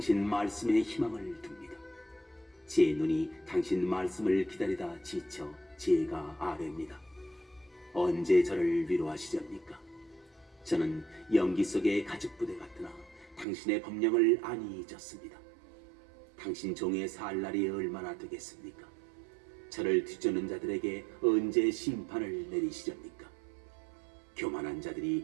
말씀에 희망을 둡니다. 제 눈이 당신 말씀을 기다리다 지쳐 제가 아뢰입니다. 언제 저를 위로하시렵니까? 저는 연기 속의 가죽부대 같으나 당신의 법령을 안이 잊었습니다. 당신 종의 살 날이 얼마나 되겠습니까? 저를 뒤쫓는 자들에게 언제 심판을 내리시렵니까? 교만한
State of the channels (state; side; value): drops out; left; at 13.5 s